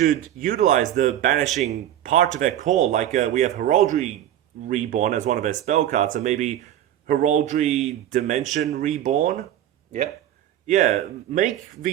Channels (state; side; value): quieter; left; 11.8 dB